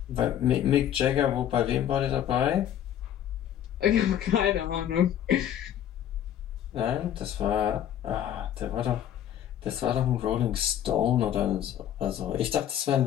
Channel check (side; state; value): right; quieter; 10.5 dB